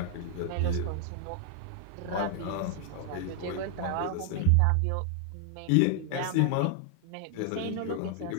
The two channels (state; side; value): different; both; correlation 0.00